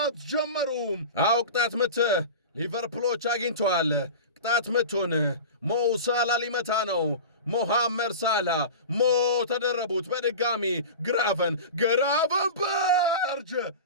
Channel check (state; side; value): inverted; both; correlation -0.31